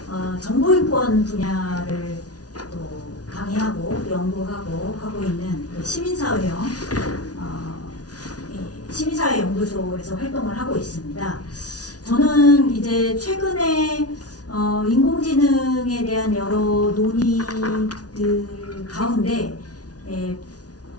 정보인권 분야를 또 강의하고 연구하고 하고 있는 그 시민사회형 시민사회연구소에서 활동을 하고 있습니다. 저는 이제 최근에 인공지능에 대한 여러 논의들 가운데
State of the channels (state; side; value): late; right; 0.68 ms